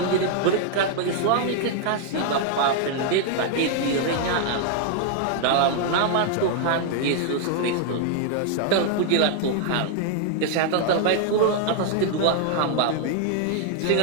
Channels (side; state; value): both; different; correlation 0.00